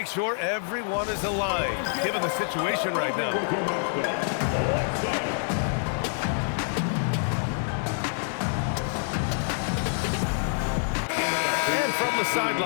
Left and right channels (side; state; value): right; silent; digital silence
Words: sure everyone is aligned, given the situation right now. From the